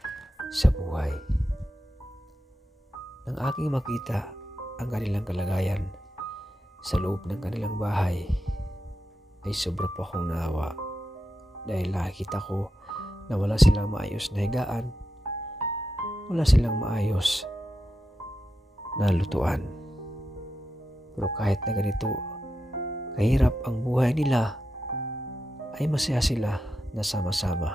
sa buhay. Nang aking makita ang kanilang kalagayan sa loob ng kanilang bahay ay sobra po akong naawa dahil nakikita ko na wala silang maayos na higaan, wala silang maayos na lutuan. Pero kahit na ganito kahirap ang buhay nila, ay masaya sila na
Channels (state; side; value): normal; both; correlation 0.88